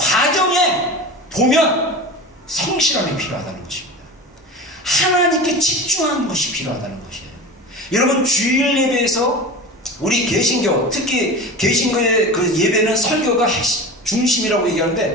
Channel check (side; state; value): both; normal; correlation 0.31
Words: 보면 성실함이 필요하다는 것입니다. 하나님께 집중하는 것이 필요하다는 것이에요. 여러분, 주일 예배에서 우리 개신교, 특히 개신교의 그 예배는 설교가 중심이라고